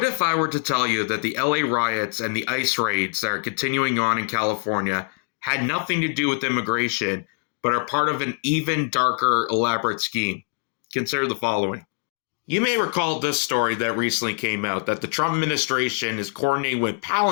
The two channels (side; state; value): right; quieter; 39.7 dB